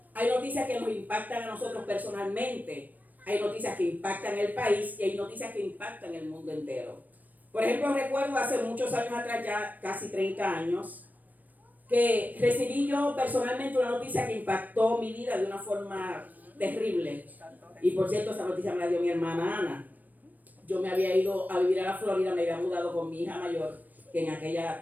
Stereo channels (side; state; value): left; late; 0.083 ms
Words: Hay noticias que nos impactan a nosotros personalmente. Hay noticias que impactan el país y hay noticias que impactan el mundo entero. Por ejemplo, recuerdo hace muchos años atrás, ya casi 30 años, que recibí yo personalmente una noticia que impactó mi vida de una forma terrible. Y por cierto, esa noticia me la dio mi hermana Ana. Yo me había ido a vivir a la Florida, me había mudado con mi hija mayor, que en